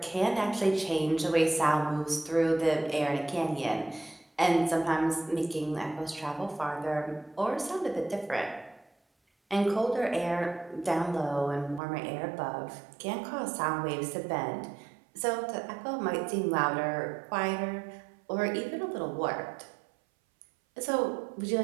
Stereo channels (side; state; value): left; drops out; at 11.8 s